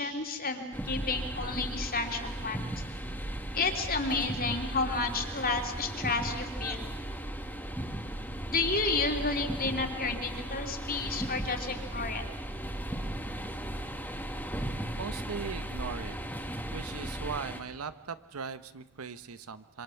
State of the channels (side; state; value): both; normal; correlation 0.27